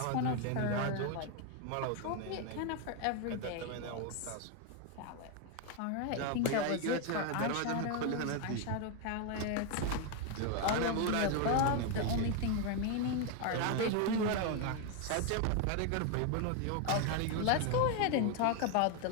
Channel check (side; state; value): both; different; correlation 0.01